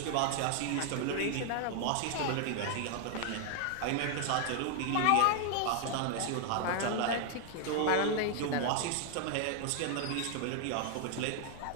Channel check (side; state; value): both; different; correlation 0.00